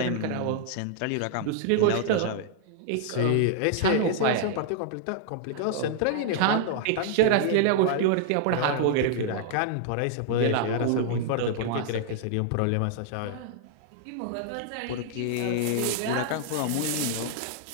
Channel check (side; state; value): both; different; correlation -0.01